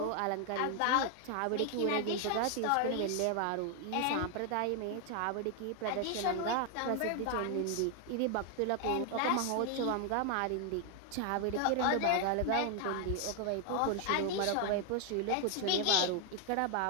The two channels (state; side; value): different; both; correlation 0.00